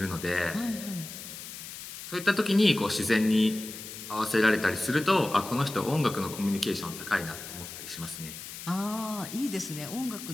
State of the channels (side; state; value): left; noise; hiss, 11 dB below the sound